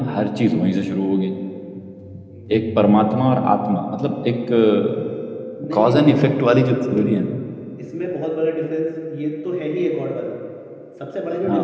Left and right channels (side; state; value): both; identical; correlation 1.00